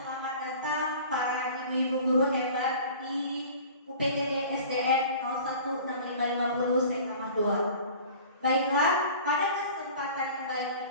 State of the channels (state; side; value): inverted; both; correlation -0.43